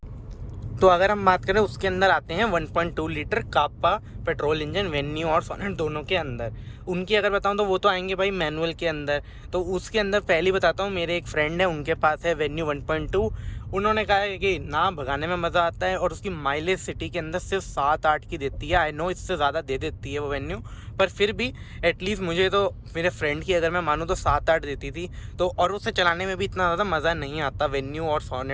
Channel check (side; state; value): both; identical; correlation 1.00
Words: तो अगर हम बात करें उसके अंदर आते हैं 1.2 लीटर कापा पेट्रोल इंजन वेन्यू और सोनेट दोनों के अंदर। उनकी अगर बताऊं तो वो तो आएंगे भाई मैनुअल के अंदर। तो उसके अंदर पहले बताता हूँ, मेरे एक फ्रेंड है उनके पास है वेन्यू 1.2। उन्होंने कहा है कि ना भगाने में मज़ा आता है और उसकी माइलेज सिटी के अंदर सिर्फ 7-8 की देती है। आई नो इससे ज़्यादा दे देती है वो वेन्यू, पर फिर भी एटलीस्ट मुझे तो मेरे फ्रेंड की अगर मैं मानूँ तो 7-8 देती थी। तो और उसे चलाने में भी इतना ज़्यादा मज़ा नहीं आता वेन्यू और